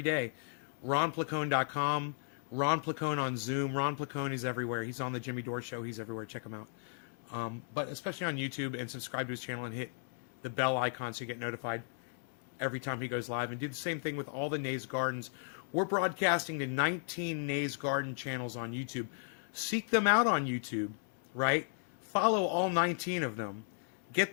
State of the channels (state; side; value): silent; right; 54 dB below the other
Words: day. RonPlacone.com. Ron Placone on Zoom. Ron Placone is everywhere. He's on the Jimmy Dore Show. He's everywhere. Check him out. But especially on YouTube, and subscribe to his channel and hit the bell icon so you get notified every time he goes live. And do the same thing with all the Nays Gardens. We're broadcasting to 19 Nays Garden channels on YouTube. Seek them out on YouTube, right? Follow all 19 of them. Get